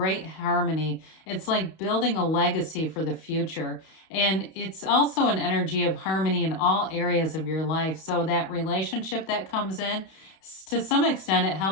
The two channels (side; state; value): right; late; 32 ms